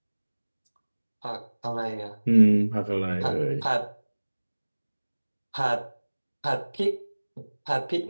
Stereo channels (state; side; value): inverted; both; correlation -1.00